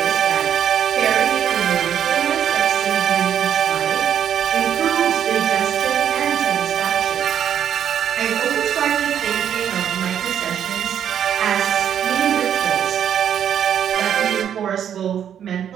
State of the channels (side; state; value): left; quieter; 9.3 dB